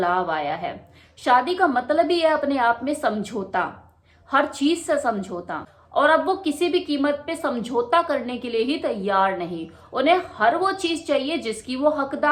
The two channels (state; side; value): identical; both; correlation 1.00